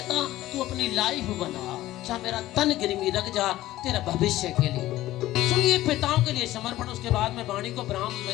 तू अपनी लाइफ बना, चाहे मेरा तन गिरवी रख जा तेरा भविष्य के लिए। सुनिए पिताओं के लिए समर्पण, उसके बाद मैं वाणी को ब्राह्म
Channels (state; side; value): quieter; right; 15.5 dB